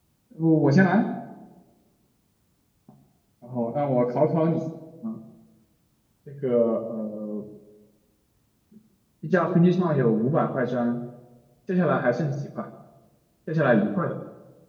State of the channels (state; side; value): identical; both; correlation 1.00